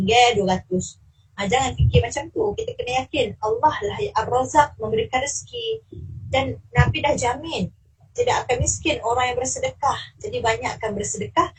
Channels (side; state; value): both; identical; correlation 1.00